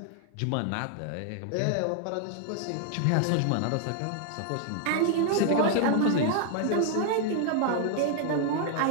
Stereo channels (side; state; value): both; different; correlation 0.00